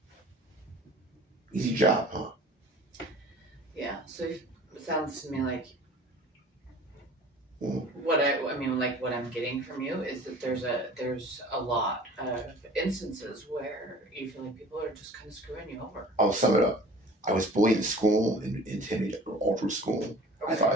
Easy job, huh? Yeah. So it sounds to me like Mm. what I'm getting from you is that there's a lot of instances where you feel like people are just kind of screwing you over. I'll sum it up. I was bullied in school and intimidated all through school. I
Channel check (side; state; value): both; normal; correlation 0.45